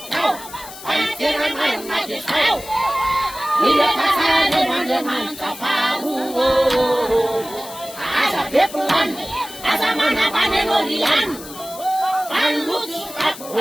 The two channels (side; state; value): left; noise; hiss, 14 dB below the sound